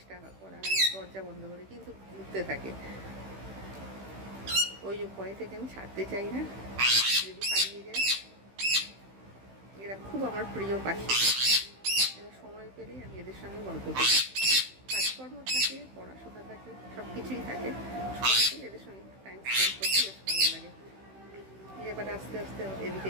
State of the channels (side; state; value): left; late; 16 ms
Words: করা হয় দরজা বন্ধ করে, কিন্তু ঘুরতে থাকে। ওই ভয় থেকে আমি ছাড়তে চাই না, যদি পালিয়ে যায়। এরা খুব আমার প্রিয় পাখি। এরা সময় পেলে আমি এদের সঙ্গে গল্প করি। কাজ কাজকর্ম থাকে, পড়াশোনা থাকে, সব কিছুই থাকে। সময় পেলে এদের সঙ্গে একটু টাইম স্পেন্ড করতে বেশ ভালো লাগে। এবার আস্তে আস্তে এদিকে